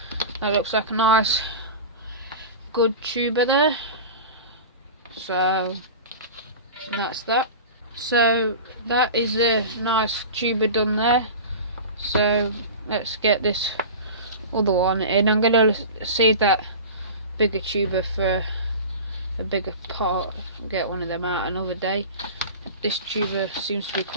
That looks like a nice good tuber there. So that's that. So that is a nice tuber done there. So let's get this other one in. I'm going to save that bigger tuber for a bigger part, get one of them out another day. This tuber seems to be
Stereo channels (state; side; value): inverted; both; correlation -0.32